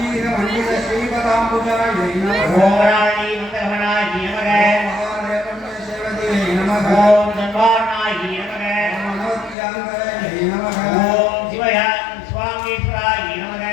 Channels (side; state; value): right; drops out; at 9.6 s